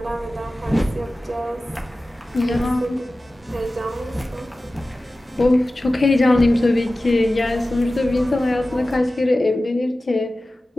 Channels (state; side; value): normal; both; correlation 0.96